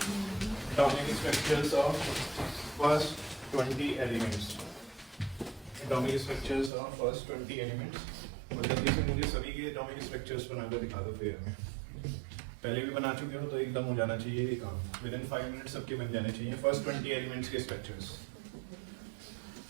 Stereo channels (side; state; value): left; drops out; at 6.7 s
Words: of first 20 elements. Atomic structures of first 20 elements. और जल्दी से मुझे सभी के एटॉमिक स्ट्रक्चर्स बनाकर दिखा दो फेयर में। पहले भी बना चुके हो तो एकदम हो जाना चाहिए ये काम, विदिन 5 मिनट सबके बन जाने चाहिए फर्स्ट 20 एलिमेंट्स के स्ट्रक्चर्स।